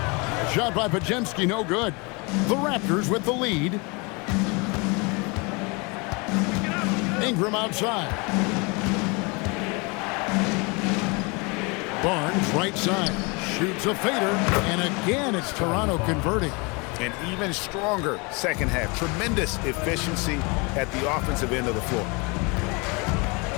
Shot by Podziemski, no good. The Raptors with the lead. Ingram outside. Barnes right side. Shoots a fader. And again, it's Toronto converting. An even stronger second half. Tremendous efficiency at the offensive end of the floor.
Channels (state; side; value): quieter; right; 29.2 dB